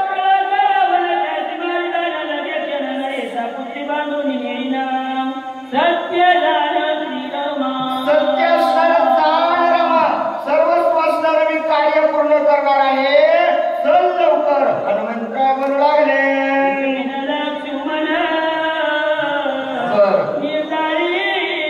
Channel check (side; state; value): both; identical; correlation 1.00